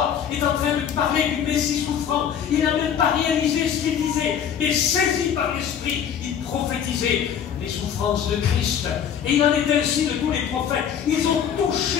est en train de parler du Messie souffrant, il n'a même pas réalisé ce qu'il disait, mais saisi par l'Esprit, il prophétisait les souffrances de Christ. Et il en est ainsi de tous les prophètes. Ils ont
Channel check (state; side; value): quieter; right; 8.5 dB